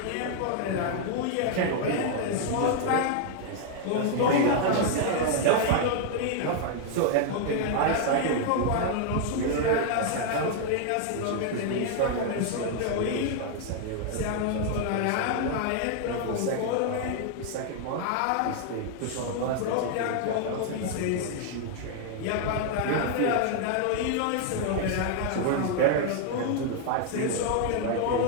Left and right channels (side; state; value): both; different; correlation 0.00